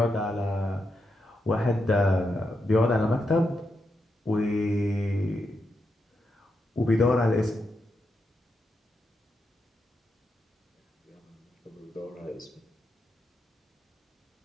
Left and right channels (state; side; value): normal; both; correlation 0.84